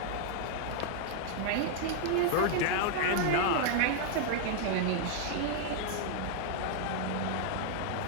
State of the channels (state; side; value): different; both; correlation -0.01